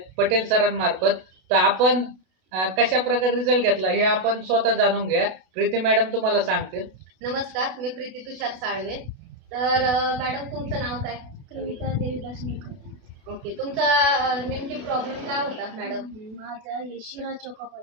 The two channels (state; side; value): late; left; 32 ms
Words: पटेल सरांमार्फत. तर आपण कशा प्रकारे रिझल्ट घेतला हे आपण स्वतः जाणून घ्या. प्रीती मॅडम तुम्हाला सांगतील. नमस्कार, मी प्रीती तुषार साळवे. तर मॅडम तुमचं नाव काय? कविता देवीदास निकम. ओके, तुमचा नेमकी प्रॉब्लेम काय होता मॅडम? माझा हे शिरा चोका